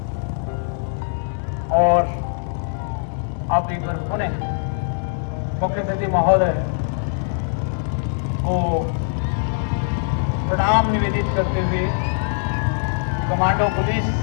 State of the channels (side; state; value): right; silent; digital silence